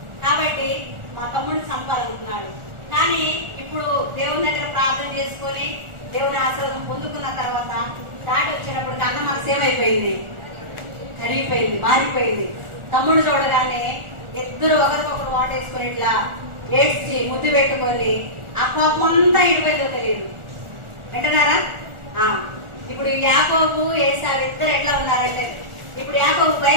కాబట్టి మా తమ్ముడిని చంపాలనుకున్నాడు. కానీ ఇప్పుడు దేవుని దగ్గర ప్రార్థన చేసుకొని దేవుని ఆశీర్వాదం పొందుకున్న తర్వాత దాటి వచ్చేటప్పటికి అన్న మనసు ఏమైపోయింది, కరిగిపోయింది, మారిపోయింది. తమ్ముడు చూడగానే ఇద్దరు ఒకరికొకరు వాటేసుకుని ఇట్లా ఏడ్చి ముద్దు పెట్టుకొని ఆ కోపం అంతా ఇడిపోయిందో తెలియదు. వింటున్నారా? ఇప్పుడు యాకోబు ఏసావు ఇద్దరు ఎట్లా ఉన్నారంటే ఇప్పుడు యాకోబు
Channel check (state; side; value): late; left; 1.4 ms